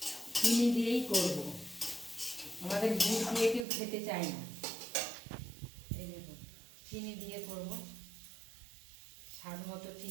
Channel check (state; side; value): drops out; left; at 3.7 s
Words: চিনি দিয়েই করব, আমাদের গুড় দিয়ে কেউ খেতে চায় না। এই দেখুন, চিনি দিয়ে করব। স্বাদ মতো